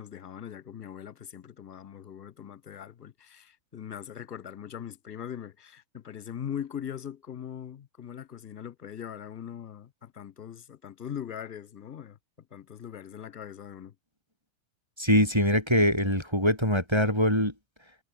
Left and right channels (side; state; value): left; late; 1.3 ms